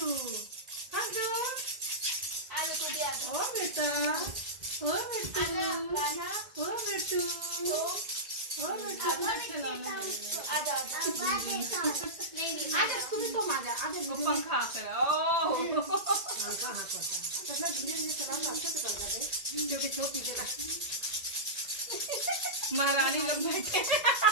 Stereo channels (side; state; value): left; late; 1.8 ms